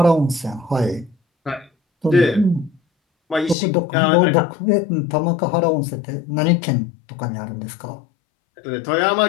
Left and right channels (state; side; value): drops out; right; at 3.6 s